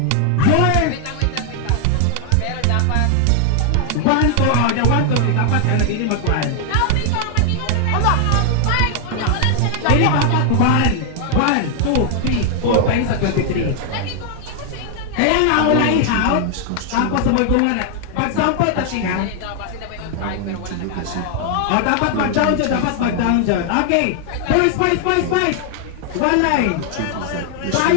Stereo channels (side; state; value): both; different; correlation 0.00